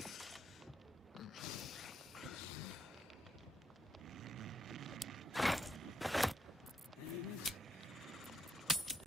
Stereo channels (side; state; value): both; normal; correlation 0.77